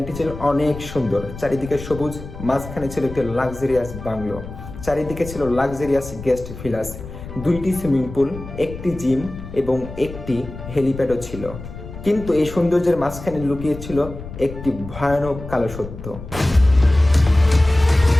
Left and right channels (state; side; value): noise; left; rumble, 12 dB below the sound